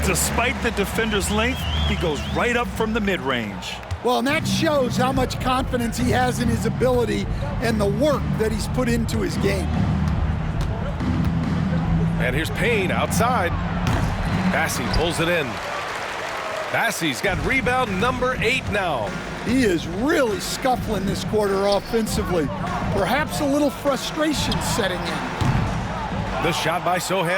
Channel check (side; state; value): both; identical; correlation 1.00